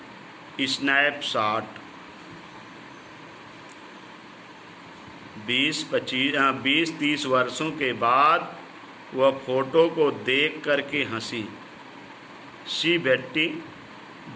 स्नैपशॉट, 20-30 वर्षों के बाद वह फोटो को देख करके हंसी। शी बेटी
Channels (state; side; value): identical; both; correlation 1.00